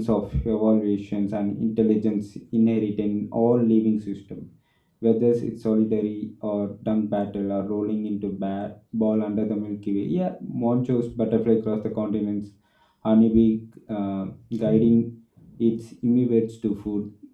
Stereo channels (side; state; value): both; identical; correlation 1.00